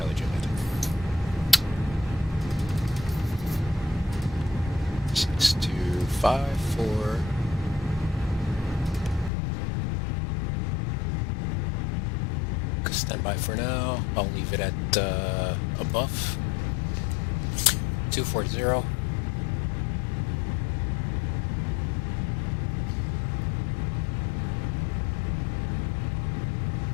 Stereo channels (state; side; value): drops out; right; at 9.3 s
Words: Juliet. 6254. Stand by for now. I'll leave it at above 240.